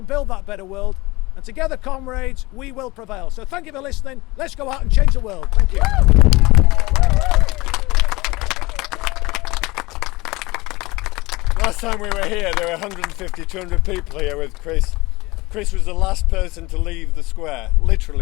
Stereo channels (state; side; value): quieter; right; 21.8 dB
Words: build that better world, and together, comrades, we will prevail. So thank you for listening. Let's go out and change the world. Thank you. Last time we were here, there were 150, 200 people here with Chris. Chris was the last person to leave the square,